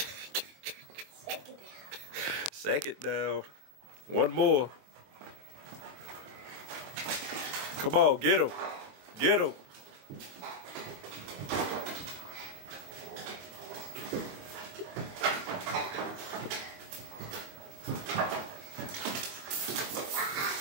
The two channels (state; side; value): late; left; 22 ms